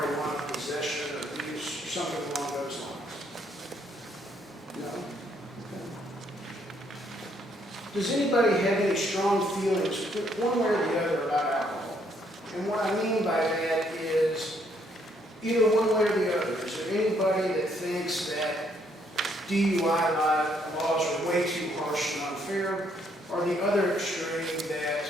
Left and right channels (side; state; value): both; normal; correlation 0.70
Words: possession or use, or something along those lines? No? Okay. Does anybody have any strong feelings, one way or the other, about alcohol? And what I mean by that is either one way or the other. Is there anybody that thinks that DUI laws are way too harsh and unfair, or the other extreme